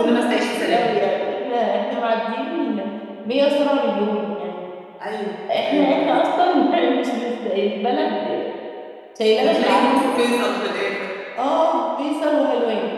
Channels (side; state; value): both; identical; correlation 1.00